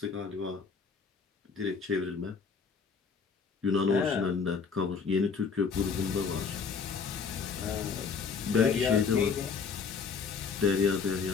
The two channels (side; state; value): right; quieter; 5.5 dB